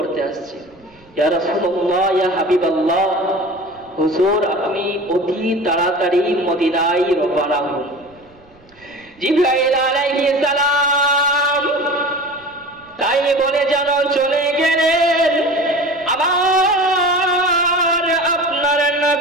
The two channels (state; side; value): noise; right; rumble, 29 dB below the sound